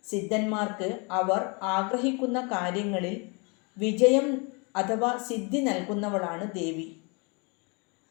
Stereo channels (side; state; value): right; quieter; 32.1 dB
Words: സിദ്ധന്മാർക്ക് അവർ ആഗ്രഹിക്കുന്ന കാര്യങ്ങളിൽ വിജയം അഥവാ സിദ്ധി നൽകുന്നവളാണ് ദേവി.